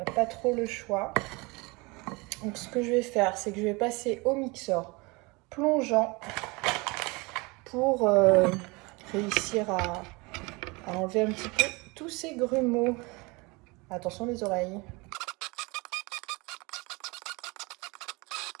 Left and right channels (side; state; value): left; quieter; 26.2 dB